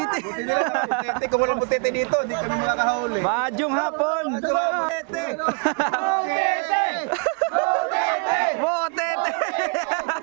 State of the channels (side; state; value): left; quieter; 36.8 dB